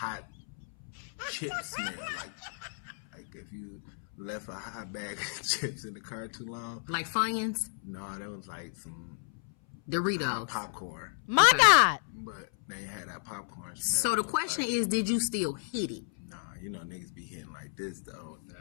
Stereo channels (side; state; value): right; silent; 56 dB below the other